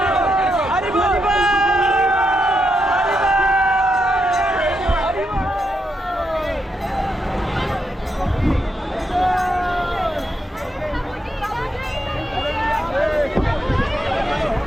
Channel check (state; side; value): normal; both; correlation 0.83